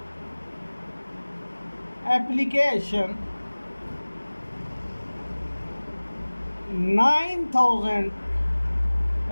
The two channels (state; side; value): inverted; both; correlation -1.00